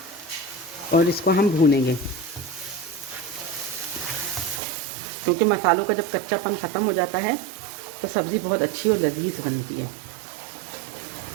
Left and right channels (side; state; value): left; drops out; at 4.6 s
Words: और इसको हम भूनेंगे। क्योंकि मसालों का जब कच्चापन ख़त्म हो जाता है तो सब्ज़ी बहुत अच्छी और लजीज बनती है।